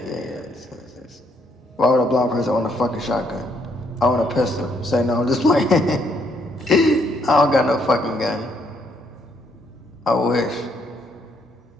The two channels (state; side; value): normal; both; correlation 0.71